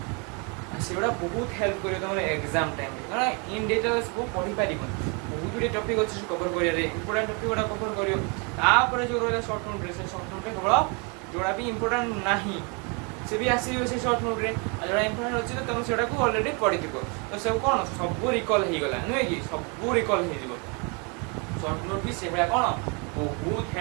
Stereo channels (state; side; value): quieter; left; 33.6 dB